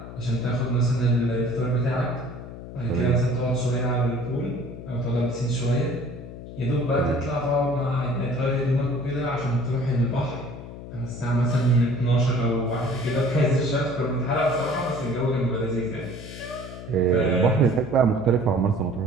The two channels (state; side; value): noise; left; hum, 12 dB below the sound